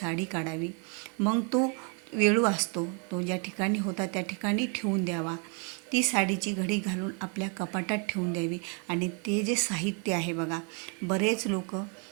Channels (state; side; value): quieter; left; 37.8 dB